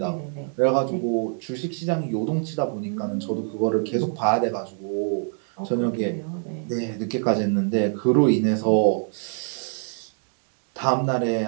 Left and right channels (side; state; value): left; silent; 55 dB below the other